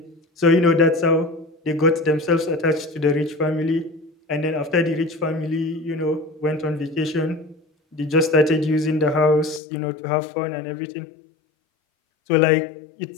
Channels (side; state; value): right; drops out; at 9.6 s